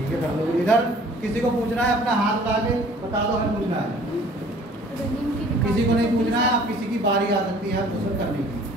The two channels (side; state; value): both; normal; correlation 0.52